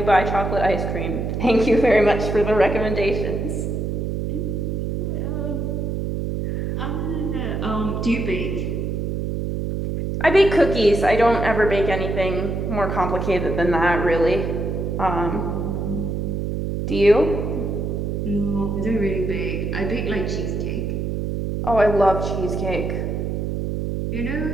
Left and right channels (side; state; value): right; noise; hum, 2 dB below the sound